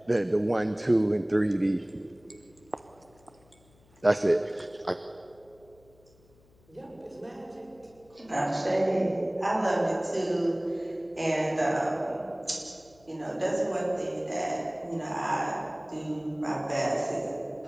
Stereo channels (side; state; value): left; noise; hum, 30 dB below the sound